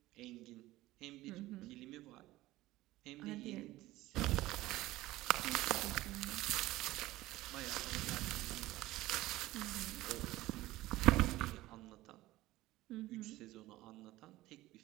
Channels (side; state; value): left; quieter; 17.3 dB